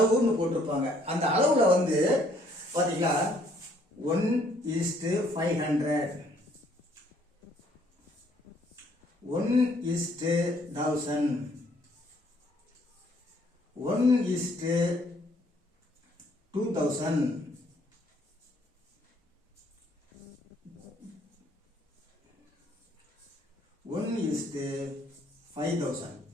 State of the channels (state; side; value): normal; both; correlation 0.64